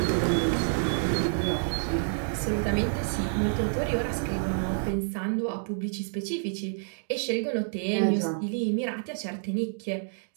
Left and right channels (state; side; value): silent; left; digital silence